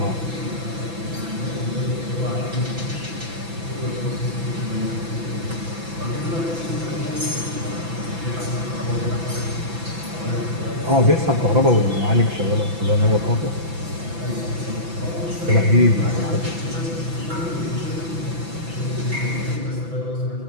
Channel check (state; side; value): late; left; 6.0 ms